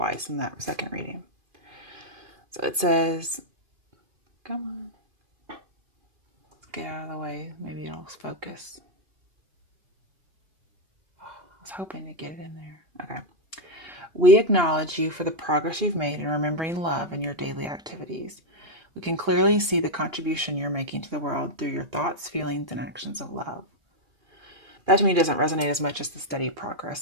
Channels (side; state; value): left; late; 2.5 ms